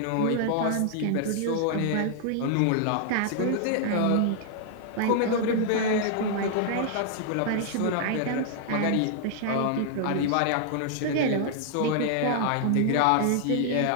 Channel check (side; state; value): both; different; correlation 0.00